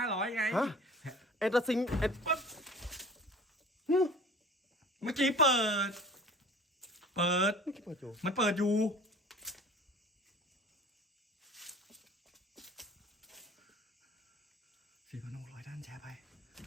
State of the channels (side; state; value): both; normal; correlation 0.44